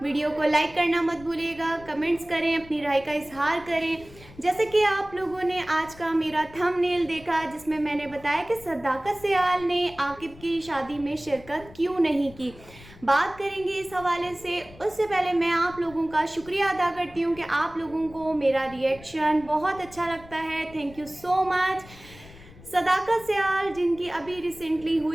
वीडियो को लाइक करना मत भूलिएगा, कमेंट्स करें, अपनी राय का इजहार करें। जैसे कि आप लोगों ने आज का मेरा थंबनेल देखा जिसमें मैंने बताया कि सदाकत सियाल ने आकिब की शादी में शिरकत क्यों नहीं की, बात करेंगे इस हवाले से। उससे पहले मैं आप लोगों का शुक्रिया अदा करती हूँ कि आप लोगों को मेरा रिएक्शन बहुत अच्छा लगता है। Thank you so much. Sadaqat Sial जिनकी अभी रिसेंटली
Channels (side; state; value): left; noise; rumble, 20 dB below the sound